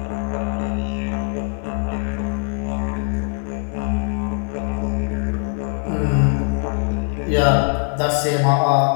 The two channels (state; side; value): silent; right; digital silence